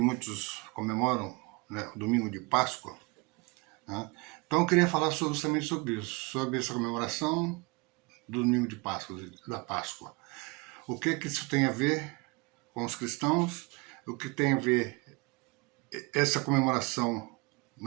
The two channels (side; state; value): left; quieter; 27.4 dB